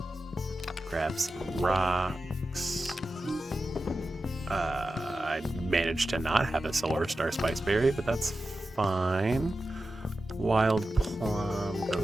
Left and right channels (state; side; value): normal; both; correlation 0.92